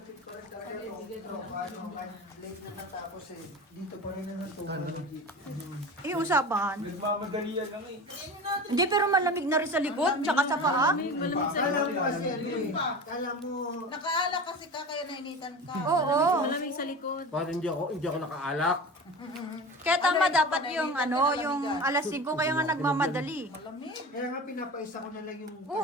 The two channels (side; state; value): both; normal; correlation 0.32